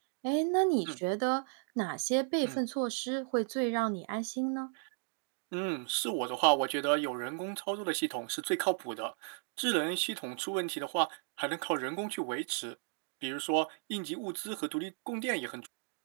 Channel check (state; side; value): silent; left; 55 dB below the other